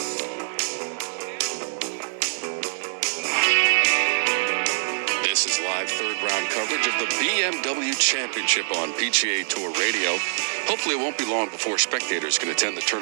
This is live third-round coverage of the BMW Championship on PGA Tour Radio. Hopefully it won't be long before spectators can attend the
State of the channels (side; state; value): left; silent; digital silence